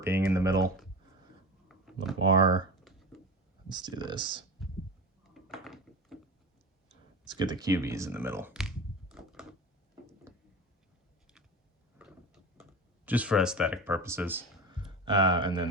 being in the middle. Lamar. Let's do this. Let's get the QBs in the middle. Just for aesthetic purposes. And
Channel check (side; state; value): both; normal; correlation 0.29